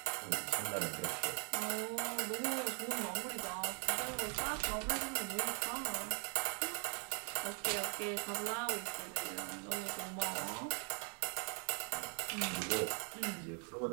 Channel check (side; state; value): left; quieter; 39.5 dB